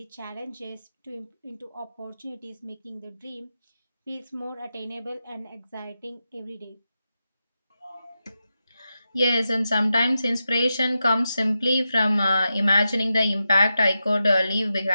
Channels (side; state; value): both; inverted; correlation -0.89